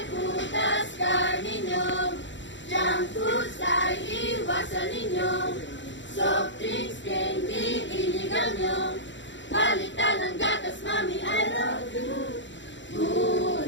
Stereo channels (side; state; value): right; late; 0.54 ms